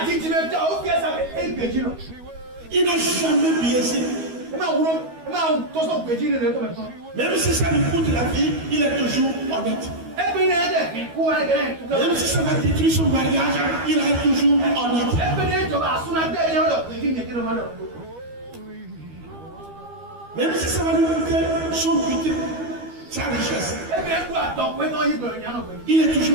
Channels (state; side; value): late; left; 12 ms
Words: Il n'a jamais biaisé. Même si ça lui coûte la vie, il est toujours honnête. Même si ça va détruire son mariage, il est toujours honnête. Même si ça va lui coûter son butin, sa richesse, il est